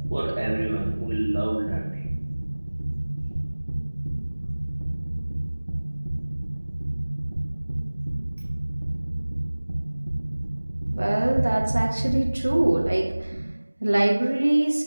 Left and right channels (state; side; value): inverted; both; correlation -1.00